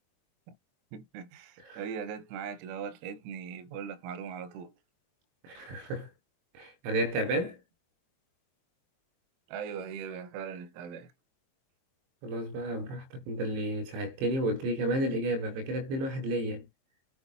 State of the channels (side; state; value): left; late; 23 ms